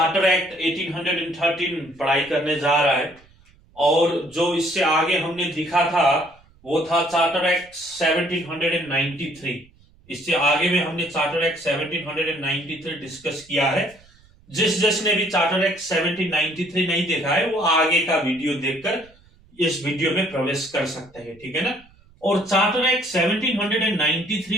act 1813 पढ़ाई करने जा रहा है और जो इससे आगे हमने लिखा था वो था चार्टर एक्ट 1793। इससे आगे में हमने चार्टर एक्ट 1793 डिस्कस किया है। जिसने भी चार्टर एक्ट 1793 नहीं देखा है वो आगे का वीडियो देखकर इस वीडियो में प्रवेश कर सकते हैं, ठीक है ना। और चार्टर एक्ट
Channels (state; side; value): noise; right; rumble, 28 dB below the sound